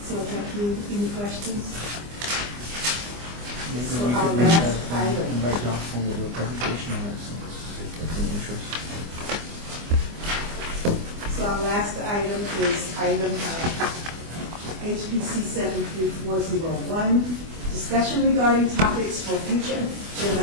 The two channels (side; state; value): left; late; 24 ms